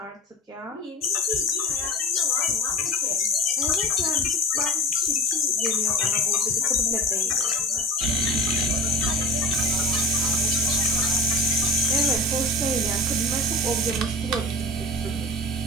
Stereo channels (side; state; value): both; normal; correlation 0.33